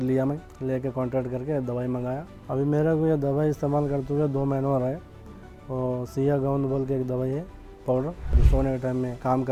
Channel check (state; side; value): identical; both; correlation 1.00